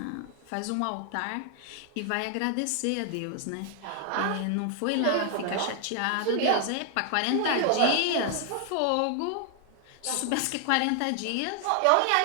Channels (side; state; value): both; different; correlation 0.00